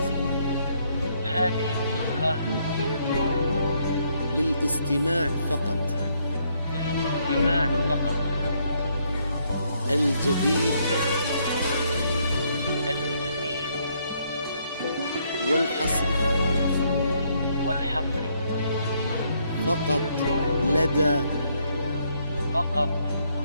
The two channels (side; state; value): both; inverted; correlation -0.71